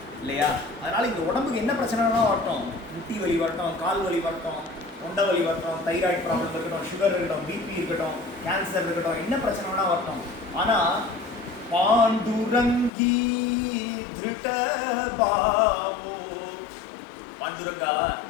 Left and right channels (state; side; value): drops out; right; at 12.9 s